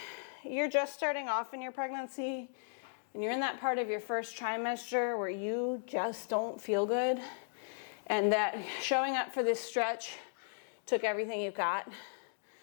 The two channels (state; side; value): silent; right; digital silence